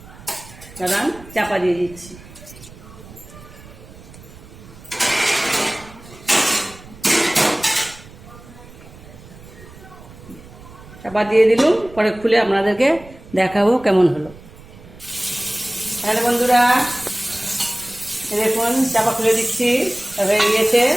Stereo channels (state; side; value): noise; right; rumble, 19 dB below the sound